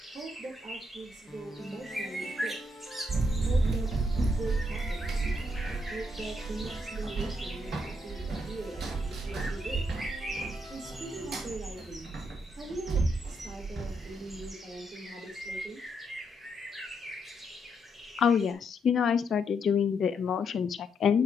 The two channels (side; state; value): both; normal; correlation 0.77